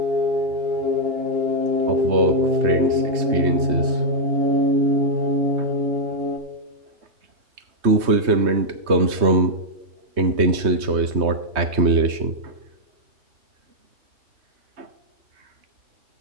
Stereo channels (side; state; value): left; late; 3.2 ms